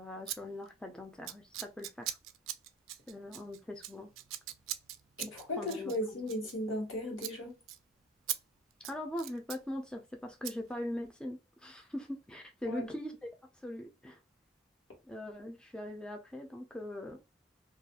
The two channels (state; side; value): normal; both; correlation 0.50